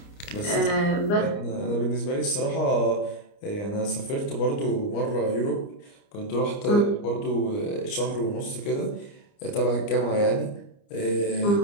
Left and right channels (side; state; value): right; late; 29 ms